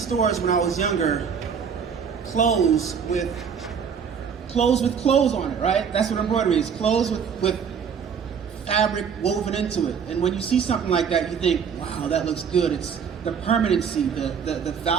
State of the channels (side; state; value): left; quieter; 6.9 dB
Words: when I was younger, clothes with clothes on it, right? That's what embroidery is, clothes with fabric woven into it. And when you see something like that, you think, wow, that looks good. It's the permanency, the